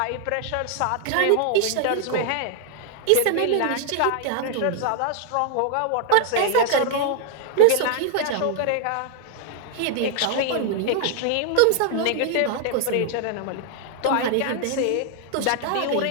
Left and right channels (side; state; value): both; different; correlation 0.00